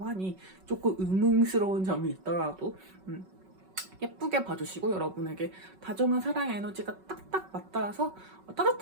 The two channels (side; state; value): left; late; 5.3 ms